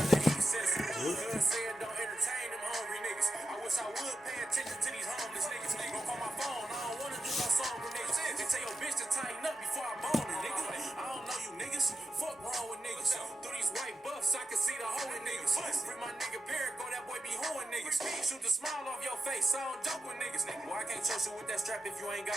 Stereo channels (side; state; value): both; normal; correlation 0.89